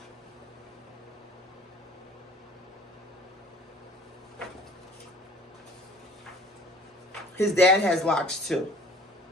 His dad has locks too.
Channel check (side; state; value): both; normal; correlation 0.50